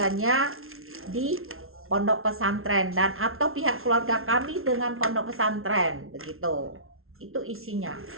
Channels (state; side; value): late; left; 0.62 ms